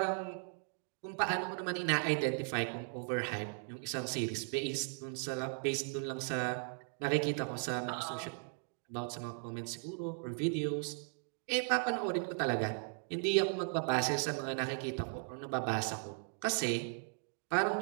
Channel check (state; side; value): silent; left; 53 dB below the other